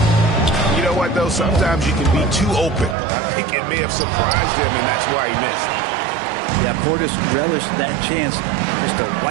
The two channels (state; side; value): drops out; left; at 3.0 s